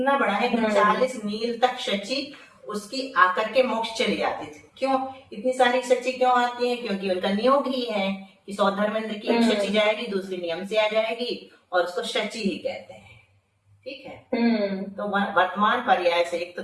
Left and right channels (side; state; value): both; identical; correlation 1.00